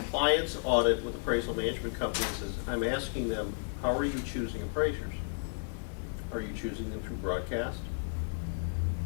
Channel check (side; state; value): right; silent; digital silence